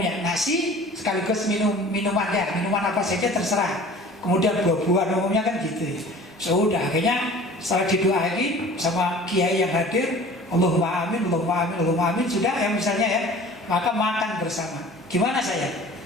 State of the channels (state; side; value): normal; both; correlation 0.44